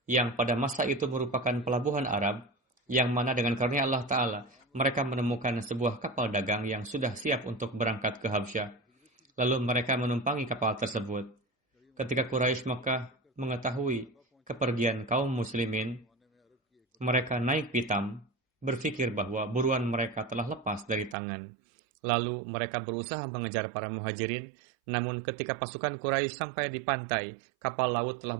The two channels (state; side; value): drops out; left; at 21.2 s